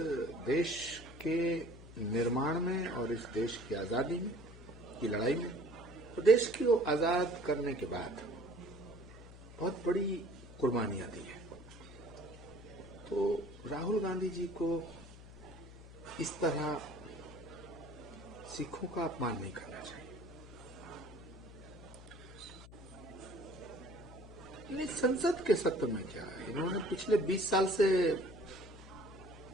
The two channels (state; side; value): noise; left; hum, 17 dB below the sound